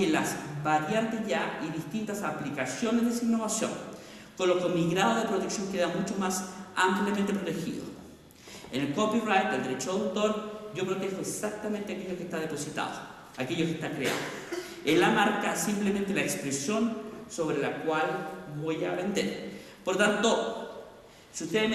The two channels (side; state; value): both; identical; correlation 1.00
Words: las variantes ya y distintas aplicaciones de esa innovación, con lo que mi grado de protección queda mucho más ampliamente protegido. En el copyright, el derecho de autor, yo protejo exactamente aquello que está depositado, aquello que está creado. En la marca, simplemente la expresión sobre la cual voy a vender. Por tanto, si ustedes